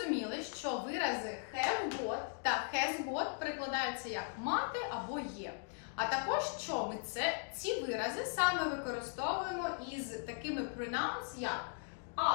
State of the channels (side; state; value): right; silent; 52 dB below the other